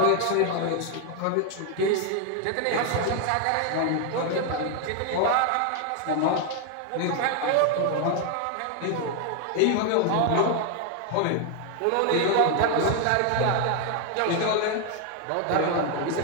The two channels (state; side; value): different; both; correlation 0.00